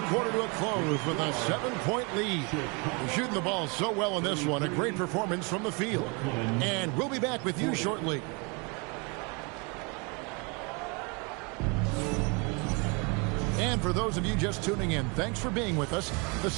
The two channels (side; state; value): left; quieter; 31.7 dB